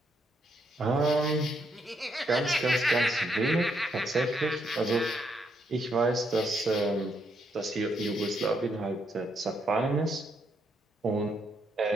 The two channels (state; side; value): normal; both; correlation 0.76